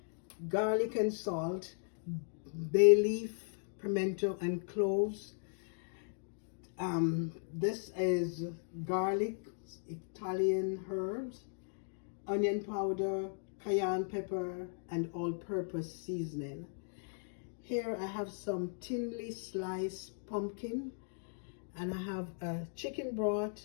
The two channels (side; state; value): right; silent; digital silence